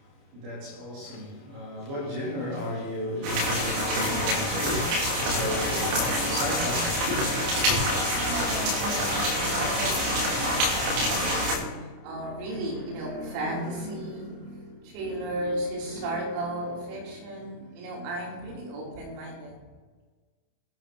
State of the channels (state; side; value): late; left; 29 ms